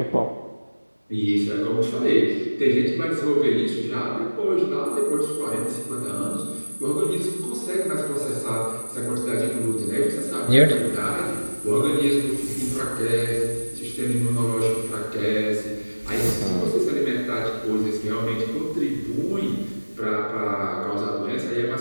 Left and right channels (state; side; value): inverted; both; correlation -1.00